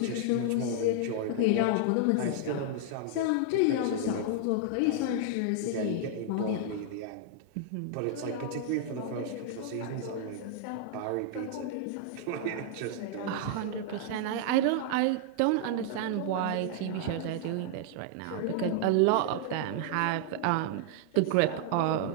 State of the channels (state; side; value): different; both; correlation -0.01